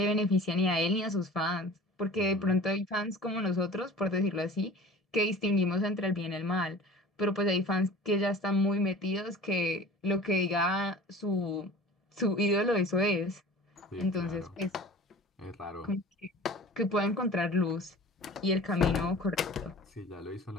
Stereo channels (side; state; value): both; normal; correlation 0.40